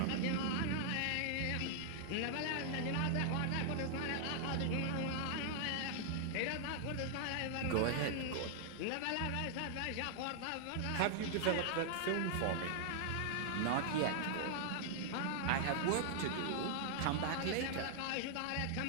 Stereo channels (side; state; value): both; different; correlation -0.01